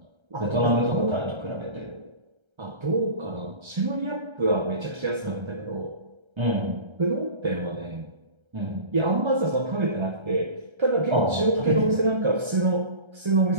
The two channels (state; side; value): late; left; 1.3 ms